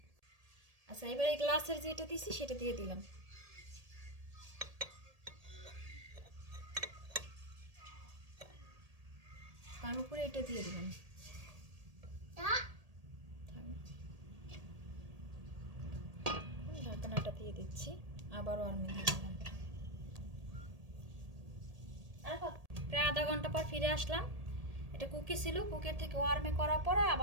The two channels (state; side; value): late; left; 1.8 ms